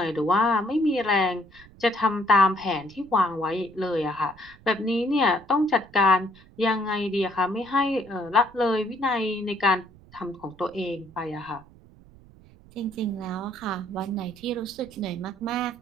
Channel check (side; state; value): right; noise; rumble, 24 dB below the sound